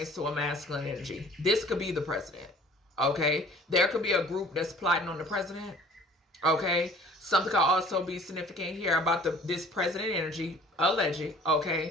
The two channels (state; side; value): normal; both; correlation 0.50